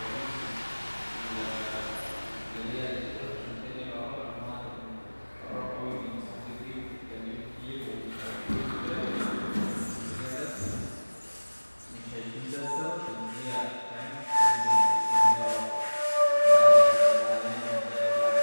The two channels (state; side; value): inverted; both; correlation -1.00